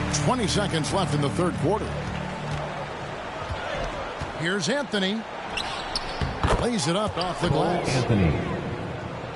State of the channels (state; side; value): identical; both; correlation 1.00